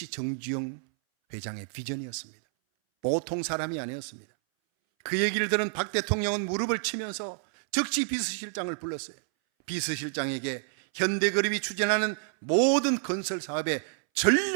정주영 회장의 비전이었습니다. 보통 사람이 아니었습니다. 그 얘기를 들은 박 대통령은 무릎을 치면서 즉시 비서실장을 불렀어요. 비서실장에게 현대그룹이 추진하는 모든 건설 사업에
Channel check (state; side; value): silent; left; 59 dB below the other